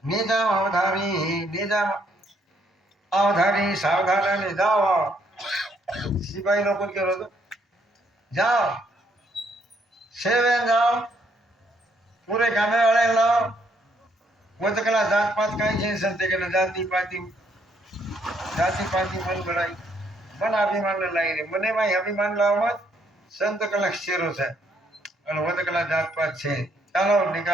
निजाम अवधारी सावधान जाओ सिपाही लोग के रोज जाओ सेवे जाओ पूरे गाने वाले लाओ वो तो कला जात पात कहीं से संते के जाति पाति मन बढ़ाई मन अभिमान लाई रे मने भाई अभिमान लाओ मत संत कला शेरो से और वो तो कला जात पात छे चलो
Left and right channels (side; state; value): both; normal; correlation 0.70